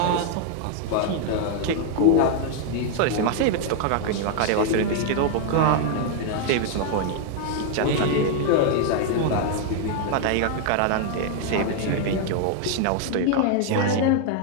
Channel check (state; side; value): different; both; correlation 0.00